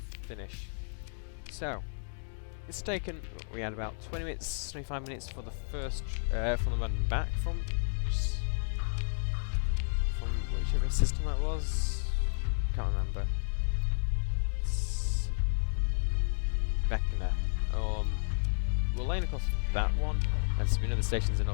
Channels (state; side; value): silent; right; digital silence